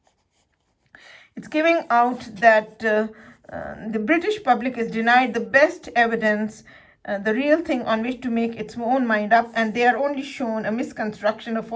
it's giving out that the British public is denied the best evidence, the real thing on which to make its own mind up, and they are only shown a misconstruction, a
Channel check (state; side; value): identical; both; correlation 1.00